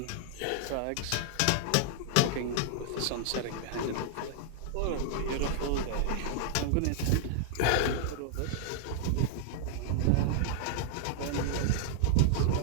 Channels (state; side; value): different; both; correlation -0.01